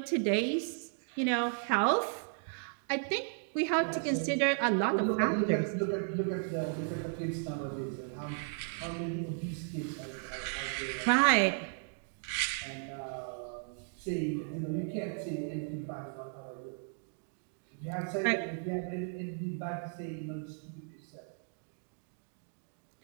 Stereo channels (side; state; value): left; silent; 54 dB below the other